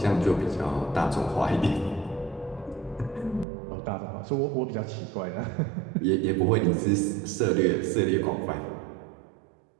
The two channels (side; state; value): left; drops out; at 3.5 s